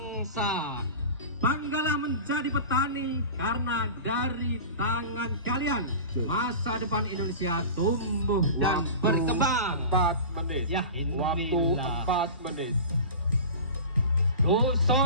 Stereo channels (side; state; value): both; inverted; correlation -0.34